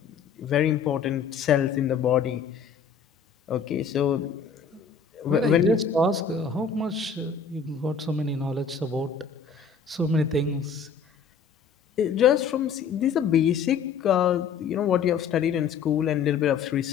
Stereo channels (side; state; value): right; quieter; 6.2 dB